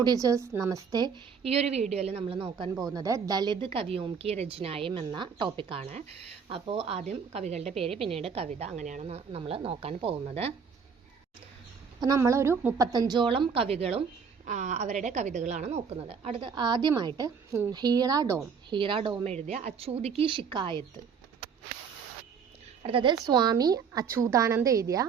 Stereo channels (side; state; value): left; quieter; 6.3 dB